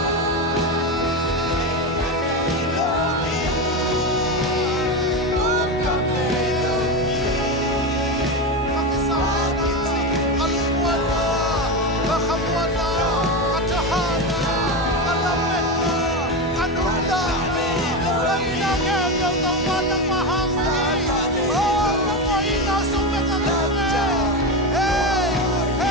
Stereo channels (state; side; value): normal; both; correlation 0.16